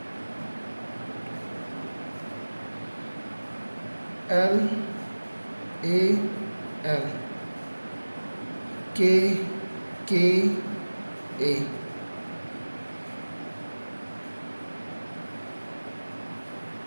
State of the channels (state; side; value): inverted; both; correlation -1.00